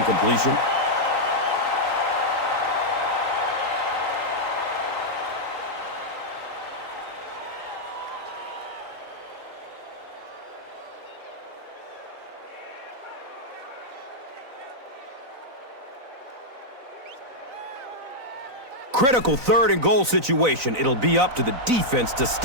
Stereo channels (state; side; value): late; left; 3.9 ms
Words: Critical third and goal situation. It'll be up to the defense to